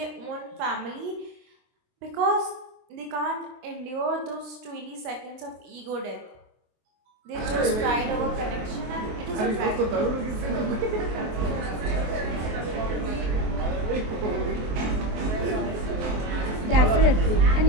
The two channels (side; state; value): left; late; 23 ms